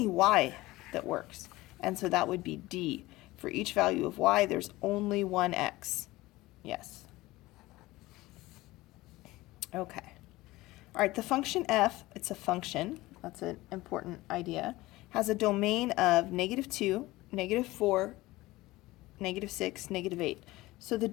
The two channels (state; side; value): quieter; right; 19.0 dB